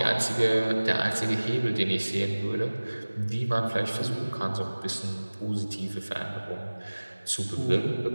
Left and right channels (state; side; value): inverted; both; correlation -1.00